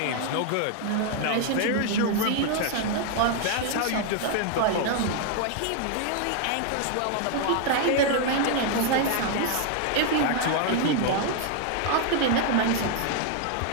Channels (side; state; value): both; different; correlation 0.00